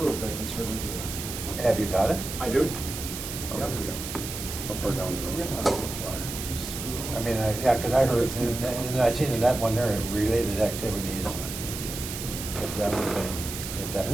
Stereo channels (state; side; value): noise; right; hiss, 7 dB below the sound